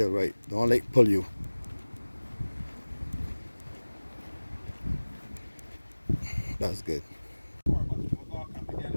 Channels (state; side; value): inverted; both; correlation -1.00